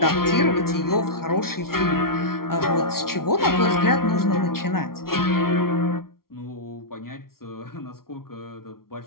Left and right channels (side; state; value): right; late; 0.93 ms